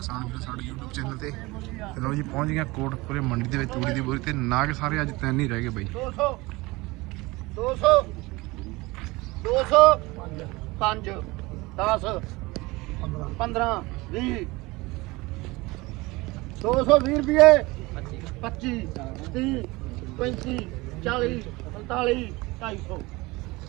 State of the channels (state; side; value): quieter; left; 22.3 dB